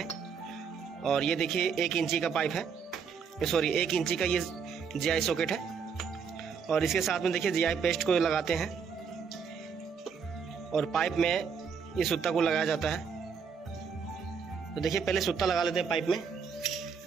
और ये देखिए 1 इंची का पाइप है, सॉरी 1 इंची का ये GI सॉकेट है। और इसके साथ में देखिए GI पेस्ट को लगाते हैं और पाइप में ये सूता को लगाया जाता है। तो देखिए पहले सूता लगा लेते हैं पाइप में।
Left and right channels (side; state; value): left; quieter; 6.3 dB